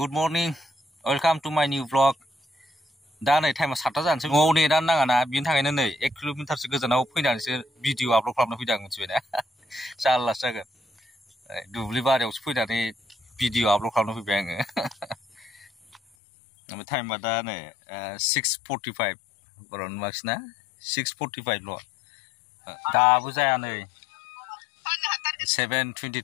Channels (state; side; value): drops out; right; at 16.0 s